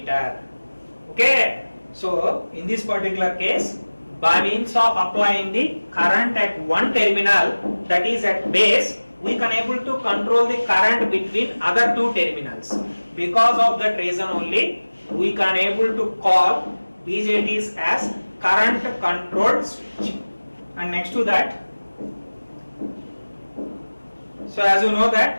Okay, so in this particular case, by means of applying the current at one terminal, that is at base, we can able to control the current between other two terminals. Because of that reason only, we can able to call BJTs as current controlled switch. And next to that, so as you know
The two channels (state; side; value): inverted; both; correlation -1.00